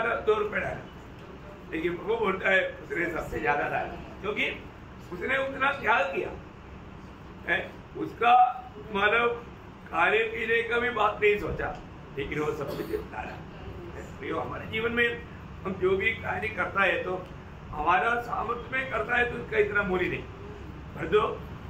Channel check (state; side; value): identical; both; correlation 1.00